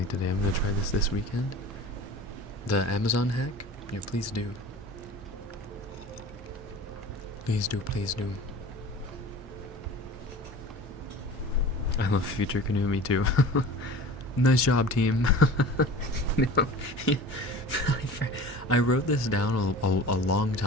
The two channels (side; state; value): both; normal; correlation 0.39